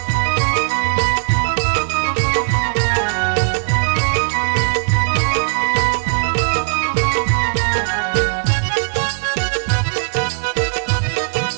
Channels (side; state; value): left; silent; digital silence